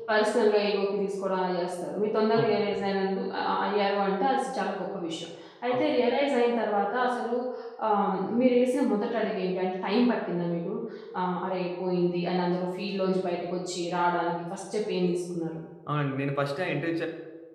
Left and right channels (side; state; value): both; identical; correlation 1.00